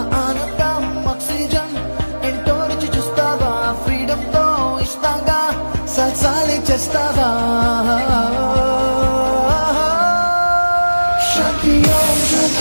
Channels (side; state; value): both; inverted; correlation -1.00